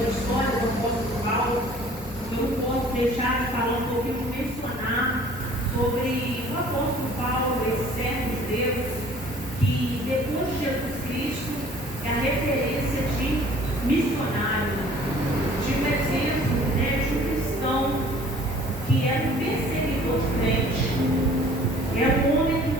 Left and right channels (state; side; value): normal; both; correlation 0.52